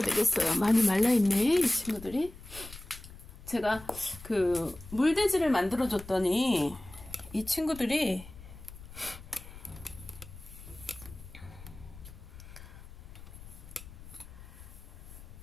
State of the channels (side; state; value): left; noise; rumble, 16 dB below the sound